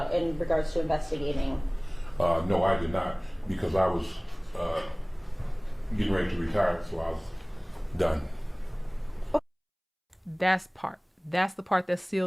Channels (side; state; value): both; identical; correlation 1.00